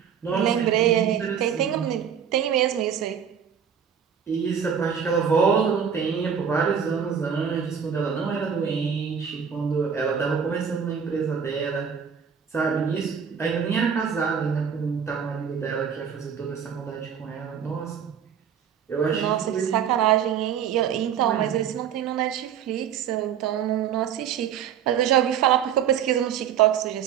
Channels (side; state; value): left; quieter; 7.9 dB